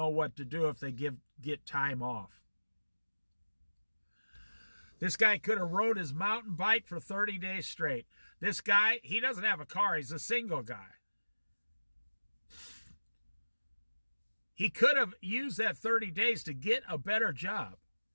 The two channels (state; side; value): inverted; both; correlation -1.00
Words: what to do if they get time off. This guy could have rode his mountain bike for 30 days straight. This guy, he doesn't have a car. He's a single guy. He could have used that 30 days to get a better job.